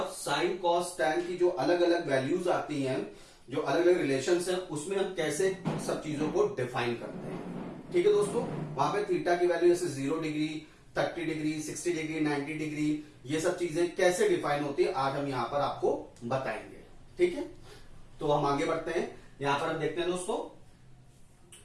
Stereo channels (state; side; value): identical; both; correlation 1.00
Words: साइन, कॉस, टैन की जो अलग अलग वैल्यूज आती हैं, जो अलग अलग रिलेशंस हैं, उसमें हम कैसे सब चीजों को डिफाइन करते हैं। ठीक है दोस्तों, वहां पे थीटा की वैल्यू जैसे 0 डिग्री, 30 डिग्री, 60 डिग्री, 90 डिग्री, ये सब चीजें कैसे डिफाइन होती है आज हम यहां पर आपको बताएंगे। ठीक है, तो हम आगे बढ़ते हैं। यहां पर हम देखते हैं दोस्तों